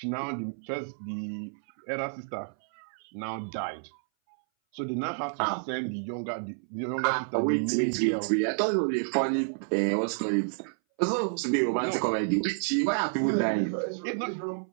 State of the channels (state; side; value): silent; left; 58 dB below the other